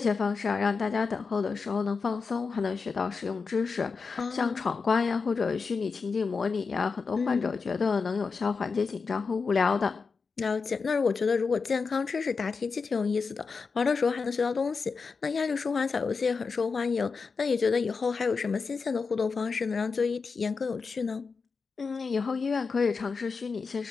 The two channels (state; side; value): quieter; right; 4.9 dB